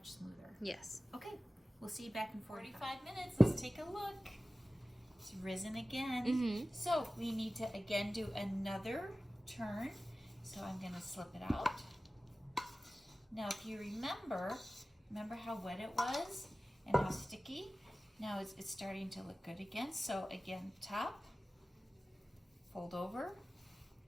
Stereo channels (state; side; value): normal; both; correlation 0.96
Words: smoother. Yes. Okay, we'll see you back in 45 minutes. Let's take a look. It's risen again. Mm-hmm. So we need to again do another turn. So I'm going to slip it out. Now if you remember how wet it was and how sticky? Now it's starting to look good again. So again, top, fold over,